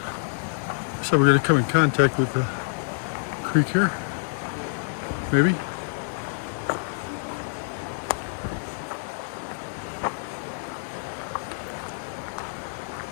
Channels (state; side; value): silent; right; digital silence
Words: So we're going to come in contact with the creek here, maybe.